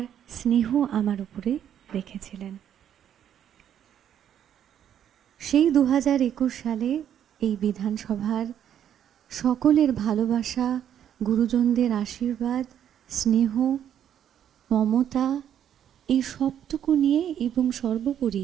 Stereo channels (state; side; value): quieter; left; 9.8 dB